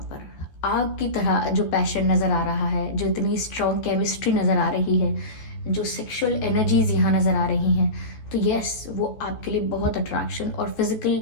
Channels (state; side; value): late; right; 14 ms